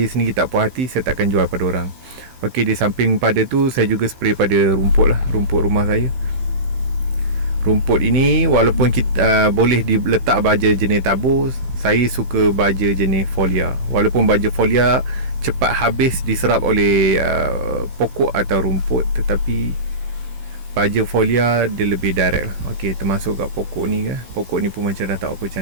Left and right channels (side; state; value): left; late; 15 ms